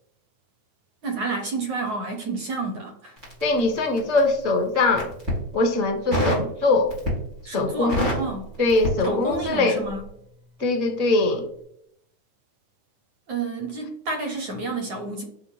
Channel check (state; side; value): late; left; 9.4 ms